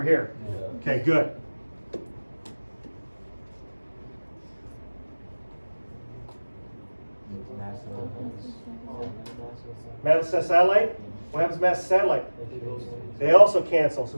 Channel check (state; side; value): inverted; both; correlation -1.00